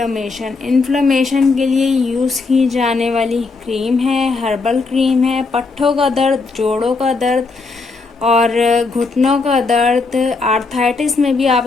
के लिए यूज़ की जाने वाली क्रीम है, हर्बल क्रीम है। पट्ठों का दर्द, जोड़ों का दर्द और घुटनों का दर्द, आर्थराइटिस में भी आप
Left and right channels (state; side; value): quieter; right; 4.0 dB